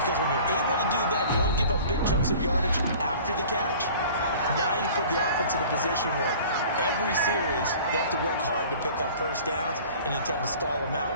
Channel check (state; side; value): inverted; both; correlation -0.45